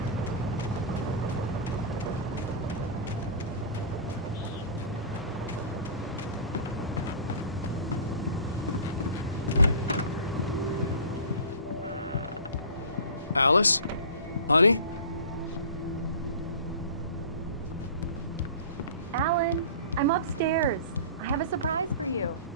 Alice? Honey? Alan, I'm upstairs. I have a surprise for you.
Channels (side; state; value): both; inverted; correlation -0.37